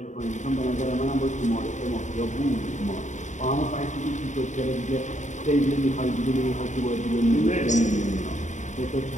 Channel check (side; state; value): right; late; 0.35 ms